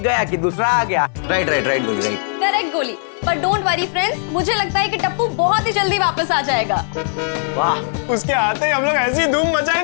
गया कि दूसरा आ गया। राइट राइट राइट गोली, राइट। करेक्ट गोली, पर डोंट वरी फ्रेंड्स, मुझे लगता है कि टप्पू बहुत ही जल्दी वापस आ जाएगा। वाह, उसके आते ही हम लोग ऐसी धूम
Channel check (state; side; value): silent; right; digital silence